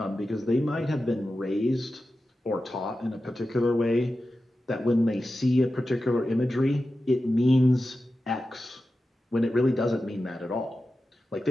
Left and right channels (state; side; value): normal; both; correlation 0.93